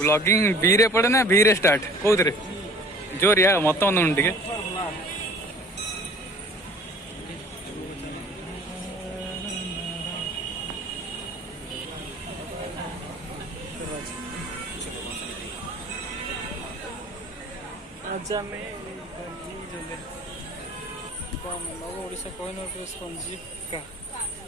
बी रे पड़े ना बी रे स्टार्ट कौन रे जोर या मत टे आजा में ओडिशा कोहिनूर स्पंजी का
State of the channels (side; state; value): both; normal; correlation 0.49